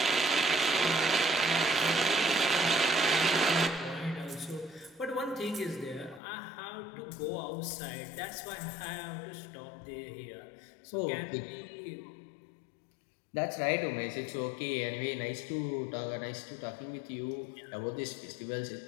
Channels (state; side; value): drops out; right; at 6.2 s